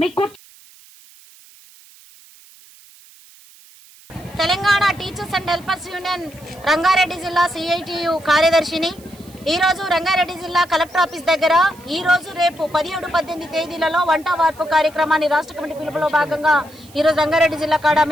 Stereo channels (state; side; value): noise; right; hiss, 24 dB below the sound